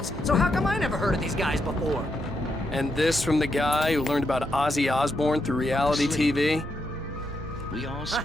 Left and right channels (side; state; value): both; normal; correlation 0.82